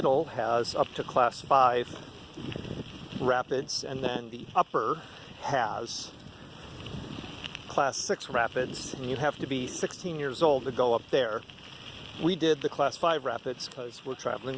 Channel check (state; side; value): identical; both; correlation 1.00